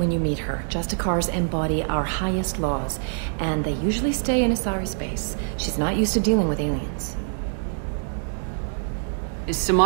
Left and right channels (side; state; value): left; silent; digital silence